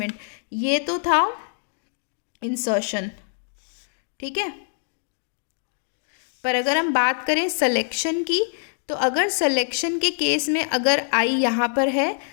ये तो था इंसर्शन। ठीक है, पर अगर हम बात करें सिलेक्शन की, तो अगर सिलेक्शन के केस में अगर आई यहाँ पर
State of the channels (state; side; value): silent; right; digital silence